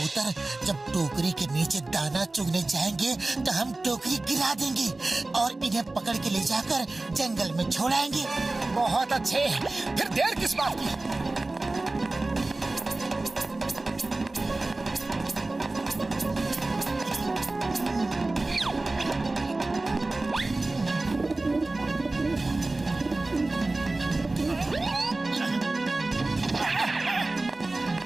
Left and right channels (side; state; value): left; quieter; 3.0 dB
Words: जब टोकरी के नीचे दाना चुगने जाएंगे तो हम टोकरी गिरा देंगे और इन्हें पकड़ के ले जाकर जंगल में छोड़ाएंगे। बहुत अच्छे, फिर देर किस बात की?